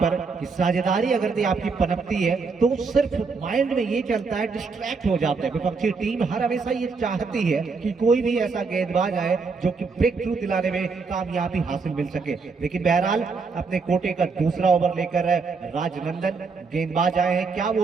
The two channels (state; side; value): quieter; left; 4.7 dB